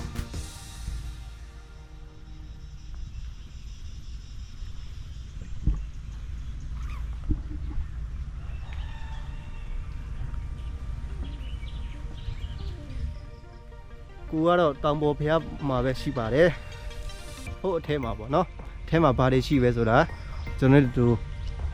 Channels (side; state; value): both; identical; correlation 1.00